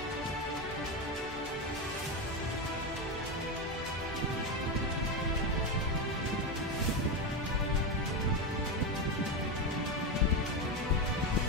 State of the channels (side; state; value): both; normal; correlation 0.13